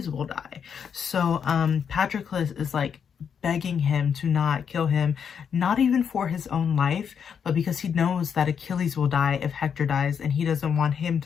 will die. So Patroclus is like begging him to not kill him, not even for his own life, but because he knows that Achilles will die if Hector dies, and he doesn't want him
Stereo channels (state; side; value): quieter; right; 7.3 dB